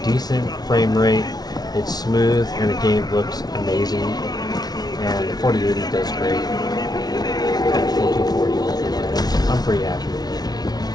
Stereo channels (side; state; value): right; late; 0.19 ms